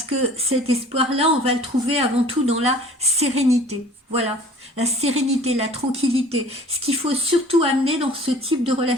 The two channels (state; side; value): normal; both; correlation 0.48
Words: que cet espoir-là, on va le trouver avant tout dans la sérénité. Voilà, la sérénité, la tranquillité. Ce qu'il faut surtout amener dans ce type de